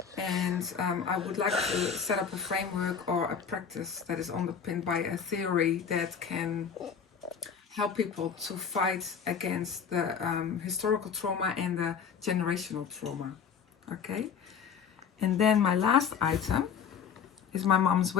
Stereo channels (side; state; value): right; quieter; 6.9 dB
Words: And I would like to set up a framework or a practice that is underpinned by a theory that can help people to fight against the historical trauma and the generational trauma. Okay? And then my last item is my mom's